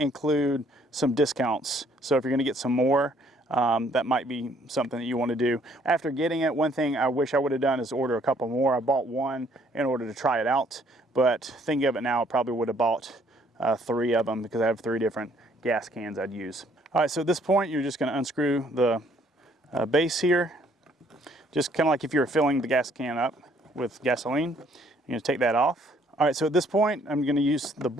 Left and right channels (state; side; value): normal; both; correlation 0.64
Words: some discounts. So if you're going to get some more, that might be something that you want to do. After getting it, one thing I wish I would have done is order a couple more. I bought one in order to try it out, but thinking of it now, I probably would have bought 3 of them because I have 3 different gas cans I'd use. All right, so at this point, you're just going to unscrew the base here. Just kind of like if you were filling the gas can up with gasoline. You're going to take that off. All right, so at this point, I'm going to use the